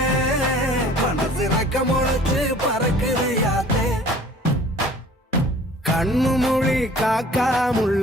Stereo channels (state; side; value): normal; both; correlation 0.49